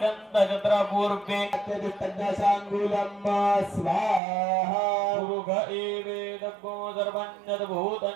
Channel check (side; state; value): left; drops out; at 4.2 s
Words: दशाङ्गुलं स्वाहा पुरुष एवेदग्गो सर्वं